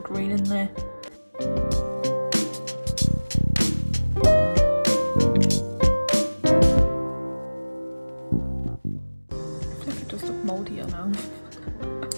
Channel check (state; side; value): inverted; both; correlation -1.00